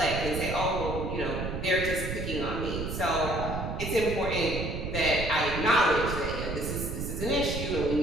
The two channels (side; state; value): right; noise; rumble, 5 dB below the sound